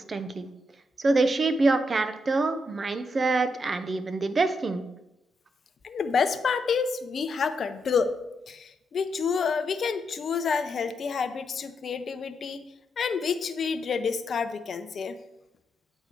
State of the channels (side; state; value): both; normal; correlation 0.81